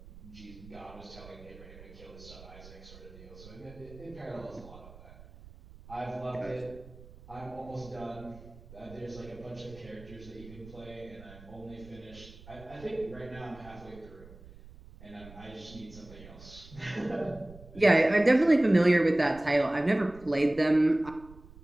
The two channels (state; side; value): noise; right; rumble, 19 dB below the sound